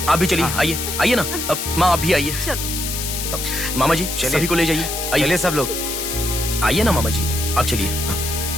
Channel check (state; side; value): noise; left; hiss, 4 dB below the sound